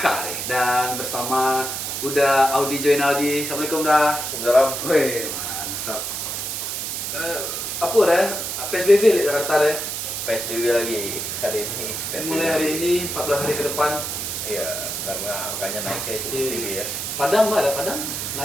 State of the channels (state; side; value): noise; right; hiss, 4 dB below the sound